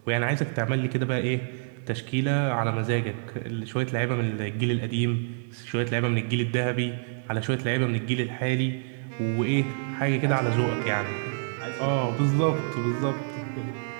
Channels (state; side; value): silent; left; digital silence